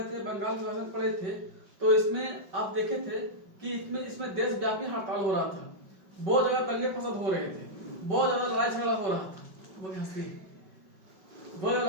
थे, बंगाल विभाजन पढ़े थे, तो इसमें आप देखे थे कि इसमें देशव्यापी हड़ताल हो रहा था, बहुत जगह दंगे फसाद हो रहे थे, बहुत ज्यादा लड़ाई झगड़ा हो रहा था, बहुत ज्यादा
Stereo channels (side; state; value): left; late; 5.2 ms